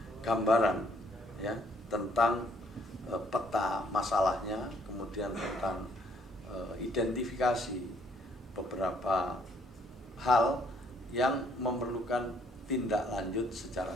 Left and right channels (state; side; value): normal; both; correlation 0.66